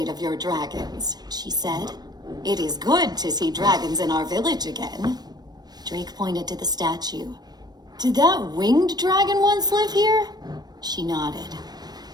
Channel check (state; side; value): late; left; 0.19 ms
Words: of your dragons, she said. It is good to see dragons in our village again. Drake pointed to the statue. Did that winged dragon once live here? She nodded.